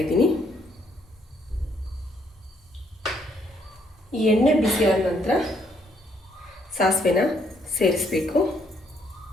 ಇದ್ದೀನಿ. ಈ ಎಣ್ಣೆ ಬಿಸಿ ಆದ ನಂತರ ಸಾಸಿವೆನ ಸೇರಿಸಬೇಕು.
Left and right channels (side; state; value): both; normal; correlation 0.70